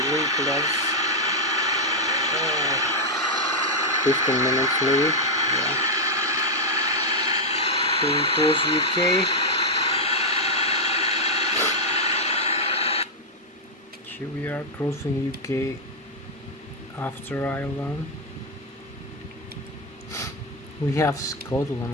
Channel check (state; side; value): normal; both; correlation -0.01